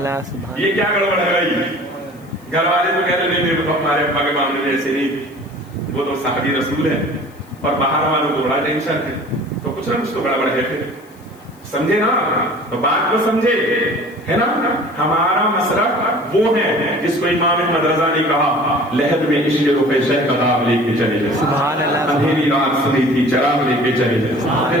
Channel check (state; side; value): noise; left; hiss, 29 dB below the sound